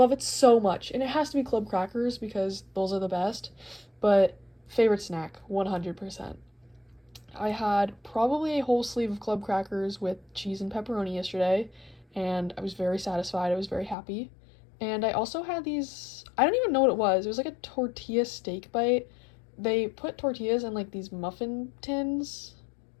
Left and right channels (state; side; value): drops out; right; at 14.0 s